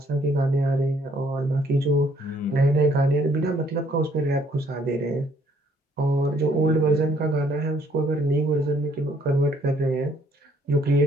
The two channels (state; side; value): normal; both; correlation 0.65